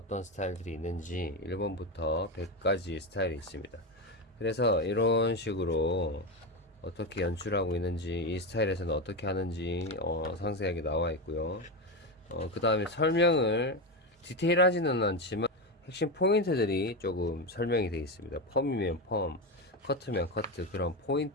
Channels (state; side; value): normal; both; correlation 0.15